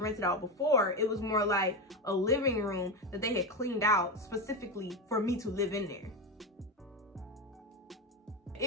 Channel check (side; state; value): both; normal; correlation 0.15